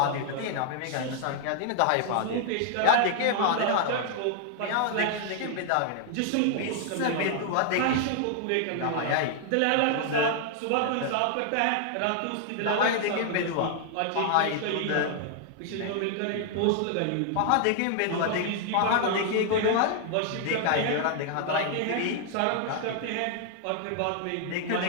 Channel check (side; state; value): both; different; correlation 0.00